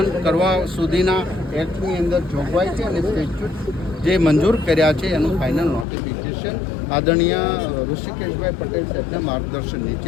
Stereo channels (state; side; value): drops out; right; at 5.9 s